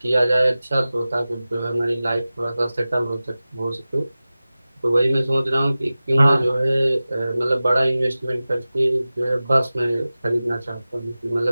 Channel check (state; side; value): inverted; both; correlation -0.96